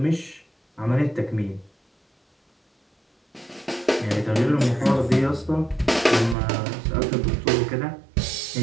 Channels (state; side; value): drops out; left; at 6.4 s